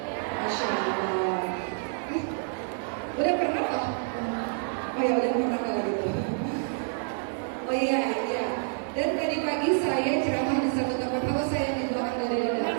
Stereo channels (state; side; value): silent; left; 59 dB below the other